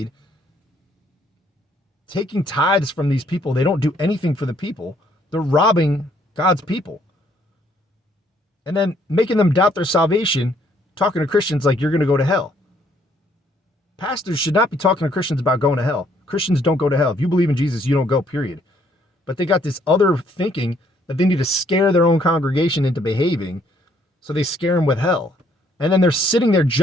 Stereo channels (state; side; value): normal; both; correlation 0.66